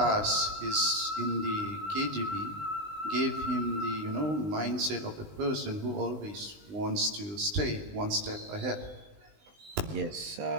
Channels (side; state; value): left; late; 20 ms